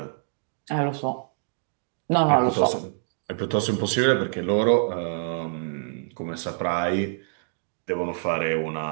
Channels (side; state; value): left; silent; digital silence